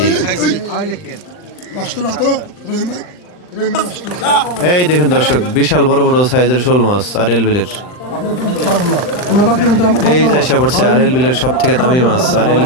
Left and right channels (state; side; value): late; right; 39 ms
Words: এই দেখুন দর্শক বিশাল বড় বড় সাইজের শোল মাছ আরএল বিলের। এই যে আইসা পড়ছে আরএল বিলের সব থেকে দামি মাছ, আরএল